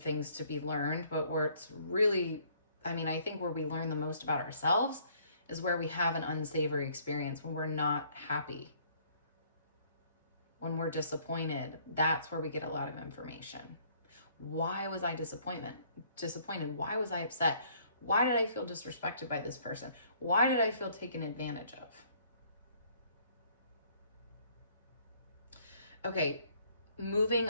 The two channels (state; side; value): inverted; both; correlation -0.62